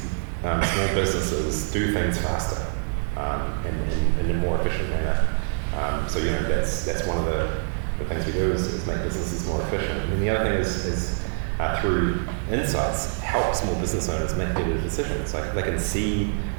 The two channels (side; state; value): left; silent; digital silence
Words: businesses do things faster and in a more efficient manner. So that's one of the things we do is make businesses more efficient. And then the other thing is through insights, help small business owners make better decisions. Like they can see